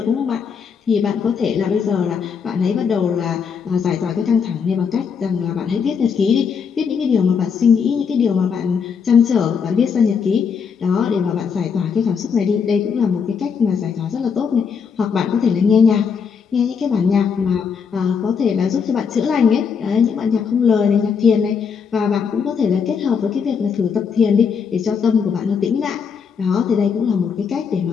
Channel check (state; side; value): quieter; right; 6.3 dB